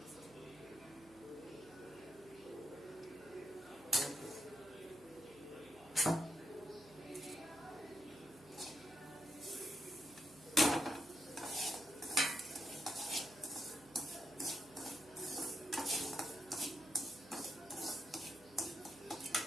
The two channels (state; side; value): noise; right; hum, 23 dB below the sound